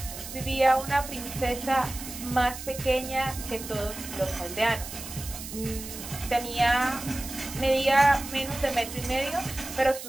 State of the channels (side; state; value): right; noise; hiss, 10 dB below the sound